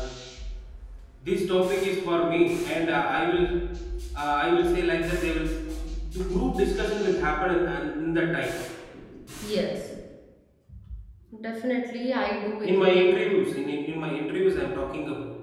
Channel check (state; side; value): identical; both; correlation 1.00